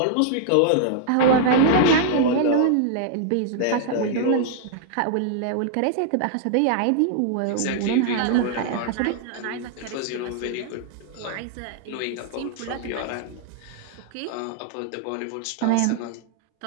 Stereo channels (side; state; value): both; different; correlation -0.01